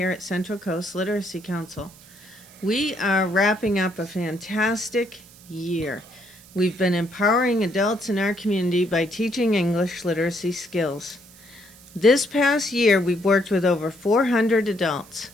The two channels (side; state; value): right; noise; hiss, 23 dB below the sound